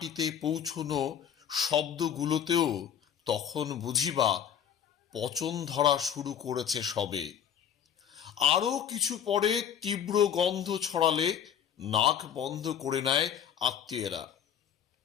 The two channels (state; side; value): quieter; right; 9.0 dB